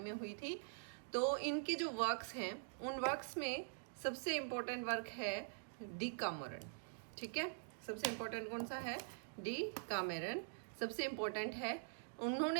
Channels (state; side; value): silent; left; digital silence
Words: हुई थी। तो इनके जो वर्क्स हैं उन वर्क्स में सबसे इम्पोर्टेंट वर्क है डी कामेरन। ठीक है, सबसे इम्पोर्टेंट कौन सा है? डी कामेरन सबसे इम्पोर्टेंट है।